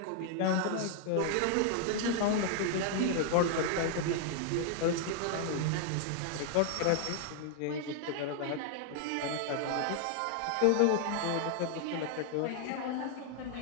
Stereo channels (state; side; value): different; both; correlation 0.00